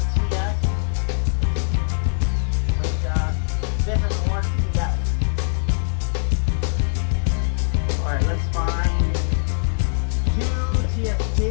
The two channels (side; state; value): right; silent; digital silence